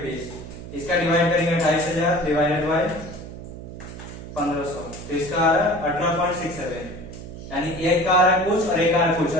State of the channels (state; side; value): noise; right; hum, 12 dB below the sound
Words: 20, इसका डिवाइड करेंगे 28,000 डिवाइडेड बाय 1500, तो इसका आ रहा है 18.67, यानी एक का आ रहा है कुछ और एक आ रहा है कुछ,